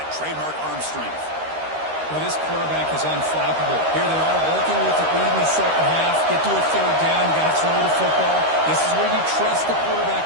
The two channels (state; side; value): late; left; 13 ms